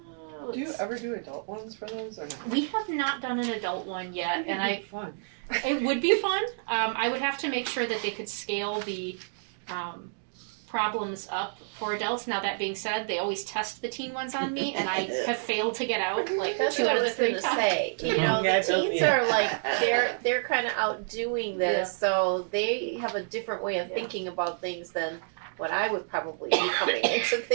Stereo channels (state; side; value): silent; left; digital silence